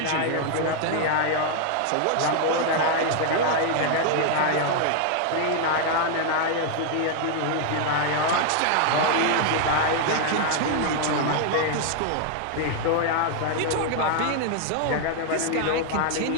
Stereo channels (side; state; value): both; different; correlation 0.00